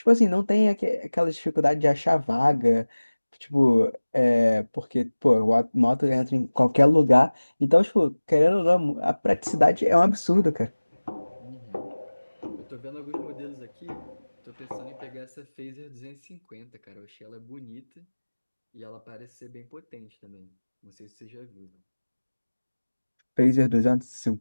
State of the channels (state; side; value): inverted; both; correlation -1.00